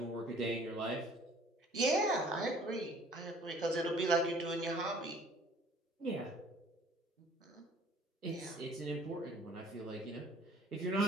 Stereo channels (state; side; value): normal; both; correlation 0.54